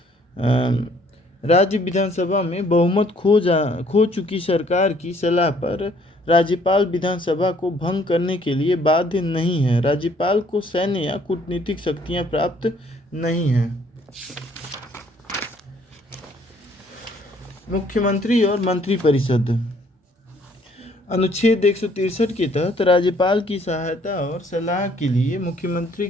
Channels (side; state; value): both; normal; correlation 0.62